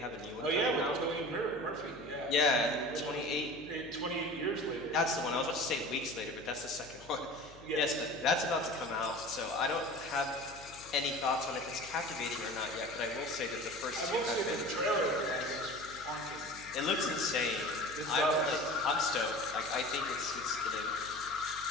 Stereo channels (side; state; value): left; noise; hum, 21 dB below the sound